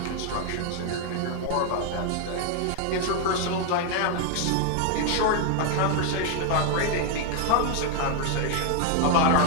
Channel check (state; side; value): different; both; correlation 0.00